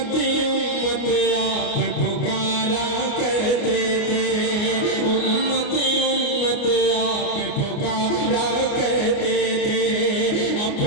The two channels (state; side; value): late; right; 29 ms